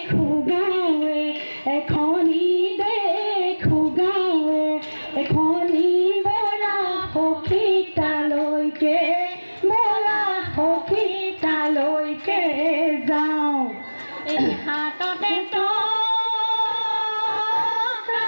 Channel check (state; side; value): inverted; both; correlation -1.00